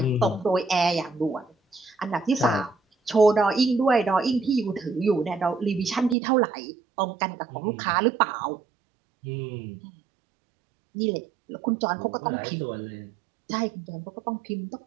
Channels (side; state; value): left; drops out; at 6.2 s